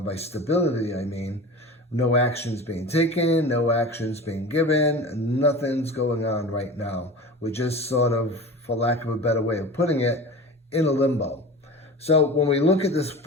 stability, I mean no actions being taken, no actions being given, nothing's going on right now. We're just sort of, for lack of a better way of putting it, in a limbo. So when we look at this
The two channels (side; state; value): both; normal; correlation 0.34